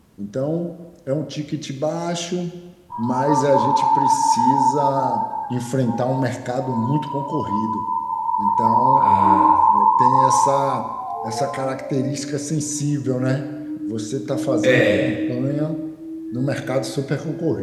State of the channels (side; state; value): both; identical; correlation 1.00